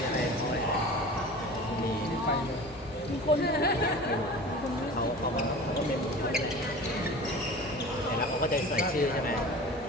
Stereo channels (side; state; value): both; normal; correlation 0.37